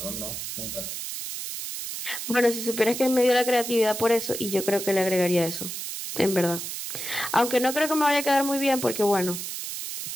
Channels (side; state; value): right; noise; hiss, 6 dB below the sound